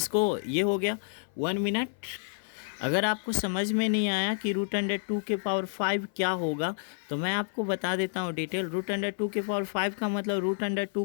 ये हो गया 1 मिनट। अगर आपको समझ में नहीं आया कि √2 के पावर 5 क्या होगा, तो मैं आपको बता देता हूँ डिटेल। √2 के पावर 5 का मतलब √2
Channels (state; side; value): silent; right; 55 dB below the other